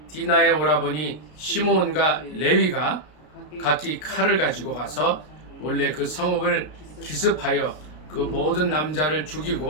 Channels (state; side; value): late; right; 33 ms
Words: 디나의 오라버니 시므온과 레위가 각기 칼을 가지고 가서 몰래 그 성읍을 기습하여 그 모든 남자를